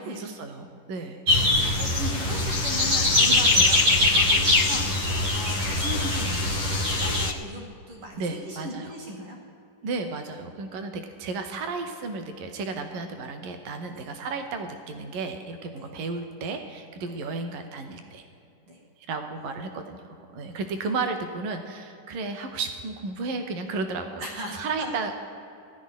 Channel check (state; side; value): late; left; 10 ms